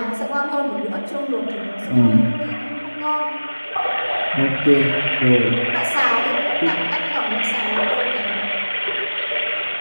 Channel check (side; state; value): both; inverted; correlation -1.00